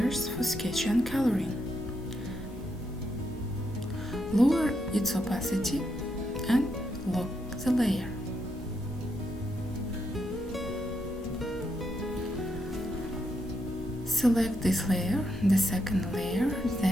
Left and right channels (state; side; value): normal; both; correlation 0.80